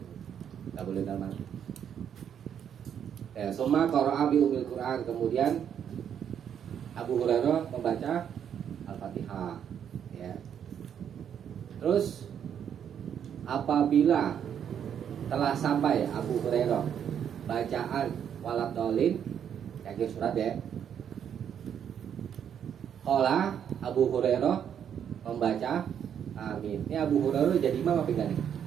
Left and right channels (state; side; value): quieter; left; 8.7 dB